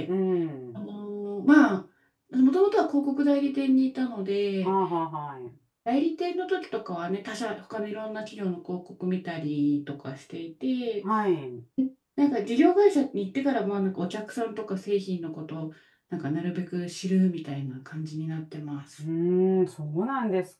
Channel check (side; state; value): both; identical; correlation 1.00